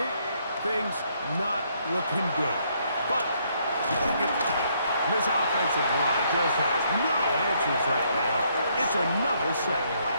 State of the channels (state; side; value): inverted; both; correlation -0.71